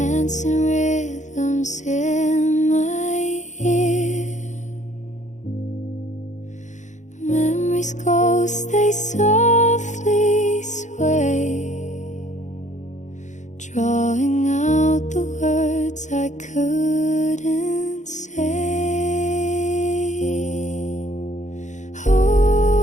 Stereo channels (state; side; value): late; right; 0.35 ms